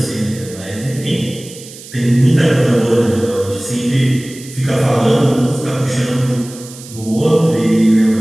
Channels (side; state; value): right; noise; hiss, 17 dB below the sound